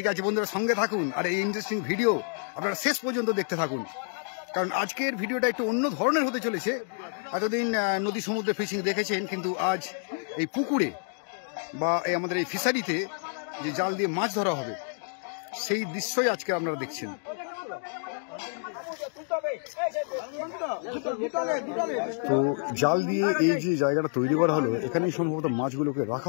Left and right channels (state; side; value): silent; right; 58 dB below the other